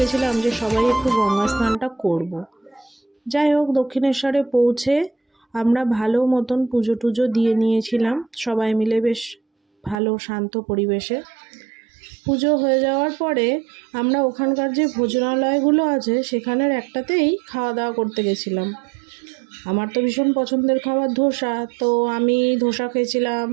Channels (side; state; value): left; drops out; at 10.0 s